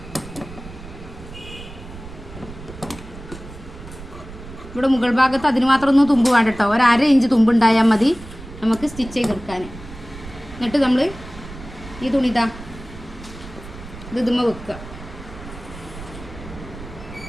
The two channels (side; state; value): right; noise; rumble, 15 dB below the sound